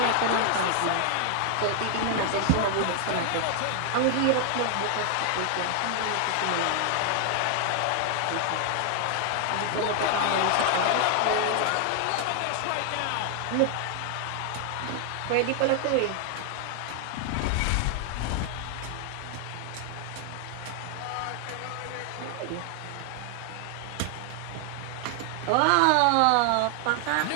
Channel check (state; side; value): different; both; correlation 0.00